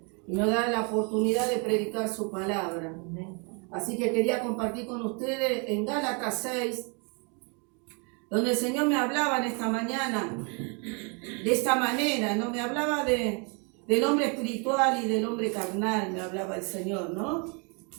Y nos da la oportunidad de predicar su palabra. Así que quería compartir con ustedes en Gálatas 6, donde el Señor me hablaba en esta mañana, de esta manera, ¿no? Me hablaba del hombre espiritual y del hombre carnal, me hablaba el Señor, ¿no?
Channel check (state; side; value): quieter; left; 35.0 dB